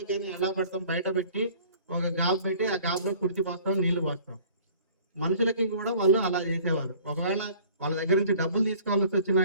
కానీ ఎలా పెడతాం, బయట పెట్టి ఒక గాబు పెట్టి ఆ గాబులో కుడిచి పోస్తాం, నీళ్లు పోస్తాం. మనుషులకి కూడా వాళ్ళు అలా చేసేవారు. ఒకవేళ వాళ్ళ దగ్గర నుంచి డబ్బులు తీసుకోవాల్సి వచ్చినా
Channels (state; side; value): inverted; both; correlation -0.51